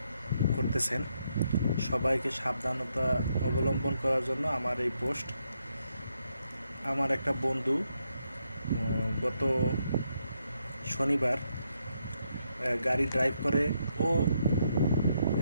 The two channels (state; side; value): inverted; both; correlation -0.79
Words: করতেছেন, সবাইকে সাবধানতা অবলম্বন করার জন্য আমার এই পোস্ট। আমার একটা বন্ধু গত শনিবার গাড়ি ড্রাইভ করে ও